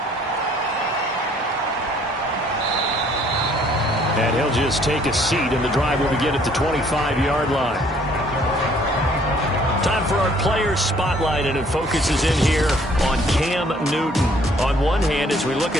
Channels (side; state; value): both; normal; correlation 0.60